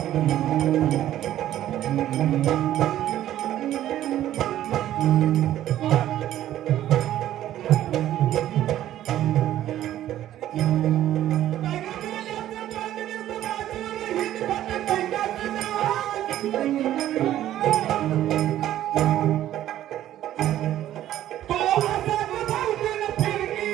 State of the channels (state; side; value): quieter; left; 12.7 dB